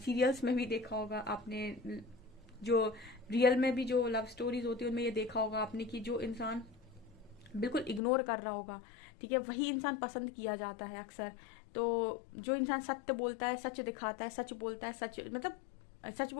में भी देखा होगा, आपने जो रियल में भी जो लव स्टोरीज होती है उनमें ये देखा होगा आपने कि जो इंसान बिल्कुल इग्नोर कर रहा होगा, ठीक है, वही इंसान पसंद किया जाता है अक्सर। तो जो इंसान सत्य बोलता है, सच दिखाता है, सच बोलता है, सच मतलब सच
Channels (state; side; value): drops out; right; at 8.0 s